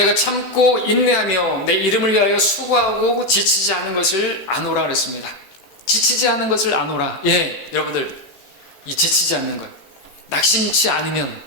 참고 인내하며 내 이름을 위하여 수고하고 지치지 않은 것을 아노라 그랬습니다. 지치지 않은 것을 아노라. 예, 여러분들, 이 지치지 않는 것, 낙심치 않으면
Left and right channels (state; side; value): late; right; 16 ms